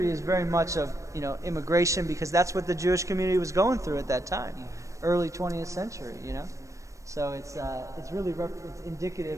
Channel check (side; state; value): left; late; 0.15 ms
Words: is very much of, immigration, because that's what the Jewish community was going through at that time, early 20th century, So it's really it's